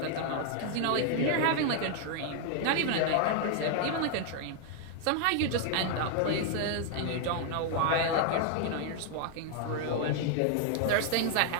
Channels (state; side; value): different; both; correlation 0.00